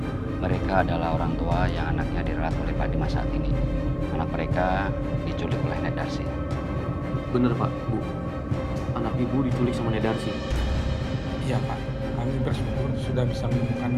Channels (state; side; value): identical; both; correlation 1.00